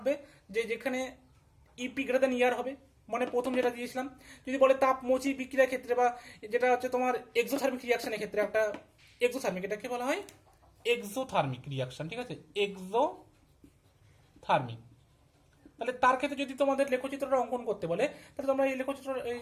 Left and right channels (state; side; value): identical; both; correlation 1.00